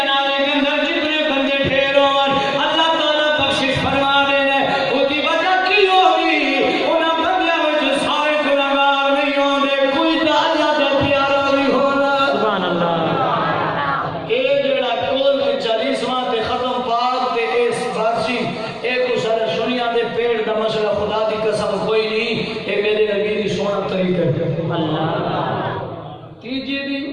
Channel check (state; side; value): identical; both; correlation 1.00